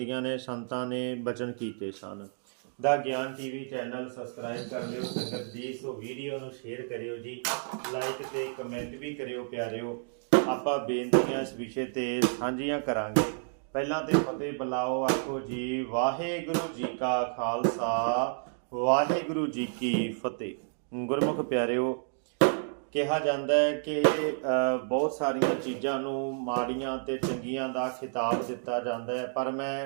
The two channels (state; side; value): silent; left; digital silence